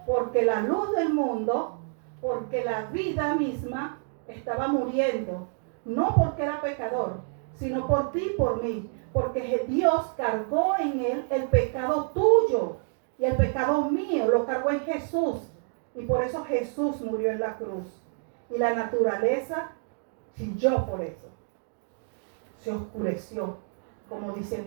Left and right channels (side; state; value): left; silent; 57 dB below the other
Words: Porque la luz del mundo, porque la vida misma estaba muriendo. No porque era pecador, sino por ti y por mí. Porque Dios cargó en Él el pecado tuyo y el pecado mío. Lo cargó en Jesús. Y por eso Jesús murió en la cruz. Y la naturaleza chilló por eso. Se oscureció, como